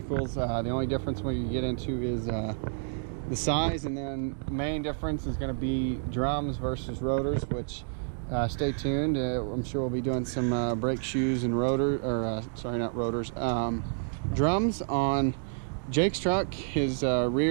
The only difference when you get into is the size, and then the main difference is going to be drums versus rotors, which stay tuned. I'm sure we'll be doing some brake shoes and sorry, not rotors, drums on Jake's truck. His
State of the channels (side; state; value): left; silent; digital silence